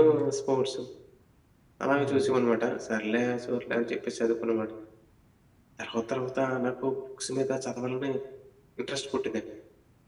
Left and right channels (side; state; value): both; identical; correlation 1.00